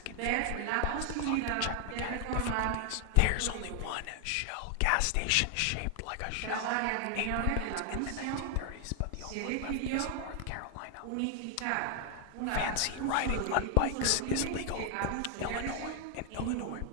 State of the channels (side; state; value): both; different; correlation 0.00